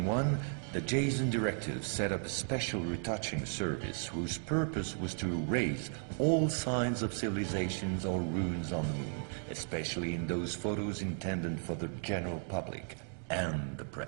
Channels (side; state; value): left; silent; 54 dB below the other